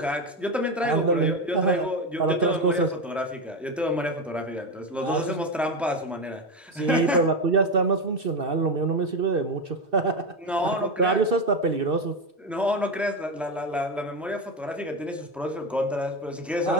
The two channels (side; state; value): both; normal; correlation 0.15